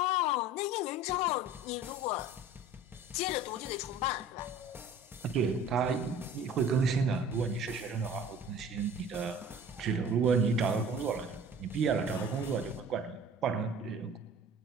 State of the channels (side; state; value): both; normal; correlation 0.44